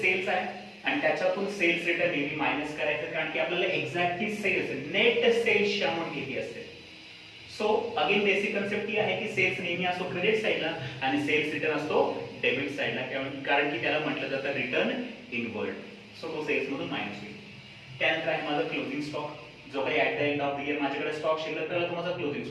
सेल्स आहे आणि त्याच्यातून सेल्स रिटर्न नेहमी मायनस करायचं, कारण की आपल्याला एक्झॅक्टली सेल्स, नेट सेल्सची अमाउंट किती असते. सो अगेन बेसिक कन्सेप्ट ही आहे की सेल्स नेहमी असतो क्रेडिट साइडला आणि सेल्स रिटर्न असतो डेबिट साइडला, कारण की त्याला म्हटलं जातं रिटर्न इनवर्ड. सो तो सेल्स मधून मायनस होईल. त्यानंतर आहे माझा क्लोजिंग स्टॉक. जो काही at the end of the year माझ्याकडे स्टॉक शिल्लक राहिला तो माझा क्लोजिंग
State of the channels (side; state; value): both; identical; correlation 1.00